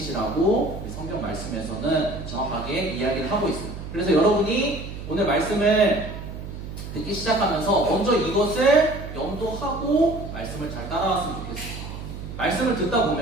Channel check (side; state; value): right; noise; hum, 9 dB below the sound